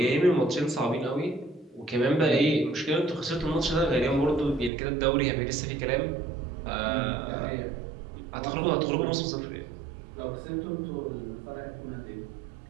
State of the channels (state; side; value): drops out; left; at 4.7 s